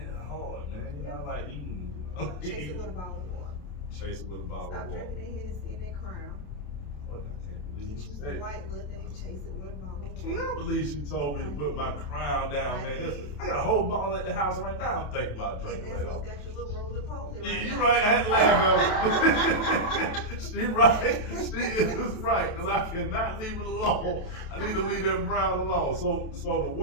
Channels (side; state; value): right; late; 27 ms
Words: it's hard, man. You know, I like eating, you know? Chase it with a bottle of water. Chase it with a bottle Stop of water. drinking that Hennessy and that Crown. What? I can't believe Get you you some said. white little thing, chase it with a bottle of water. Can't believe she told me to put my crown down, man. I got a whole bottle at the house right now. I'm thinking about drinking And later. that's what's got your little roly-poly right Yeah, now. you're right. I had to laugh at her. She right. She is right. Because I cannot leave it alone. I need to leave that brown alone. So the